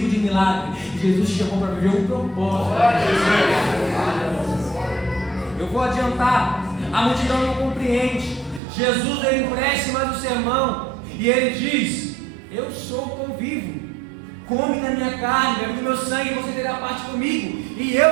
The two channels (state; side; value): drops out; left; at 8.6 s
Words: de milagre, Jesus te chamou para viver um propósito. Eu vou adiantar, a multidão não compreende. Jesus ele empresta mais o sermão e ele diz: eu sou o pão vivo. Come da minha carne, bebe do meu sangue, e você terá parte comigo, e